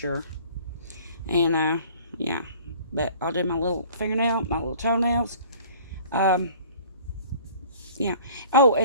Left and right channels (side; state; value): both; inverted; correlation -0.49